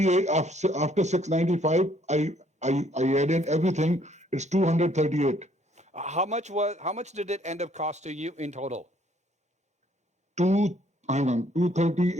after 695. I added everything. It's 238. How much did it end up costing you in total?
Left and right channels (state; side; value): normal; both; correlation 0.64